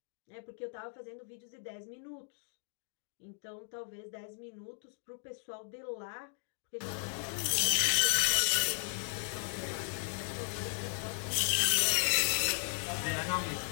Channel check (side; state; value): right; silent; digital silence